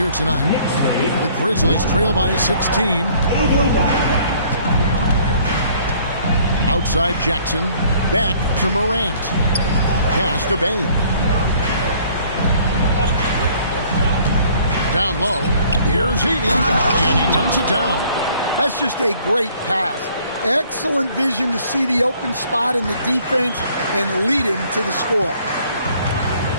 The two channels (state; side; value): inverted; both; correlation -0.58